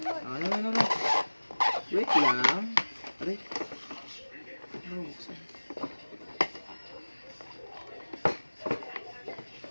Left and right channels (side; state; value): both; inverted; correlation -1.00